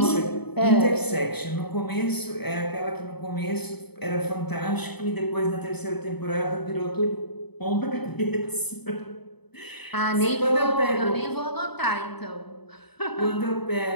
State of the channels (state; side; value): late; right; 0.98 ms